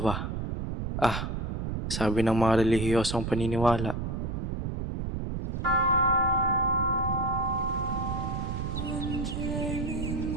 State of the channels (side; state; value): right; noise; rumble, 3 dB below the sound